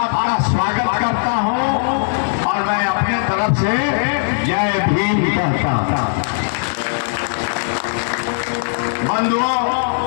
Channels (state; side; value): silent; right; digital silence